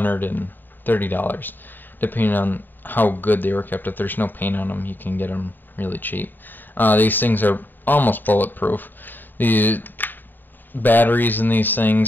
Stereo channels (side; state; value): right; late; 0.091 ms